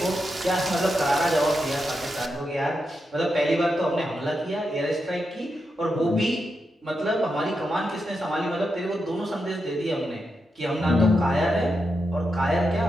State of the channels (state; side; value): normal; both; correlation 0.86